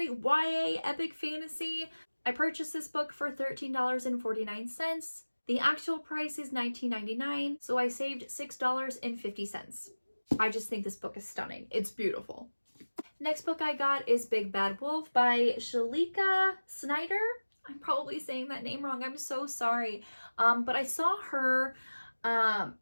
YA epic fantasy. I purchased this book for $13.49. The actual price is $19.99, so I saved $6.50. I just think this book is stunning. It's beautiful. Next book I got is Big Bad Wolf by Shalika Snyder. I'm probably saying that name wrong. I'm so sorry. But I saw her,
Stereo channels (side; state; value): both; inverted; correlation -1.00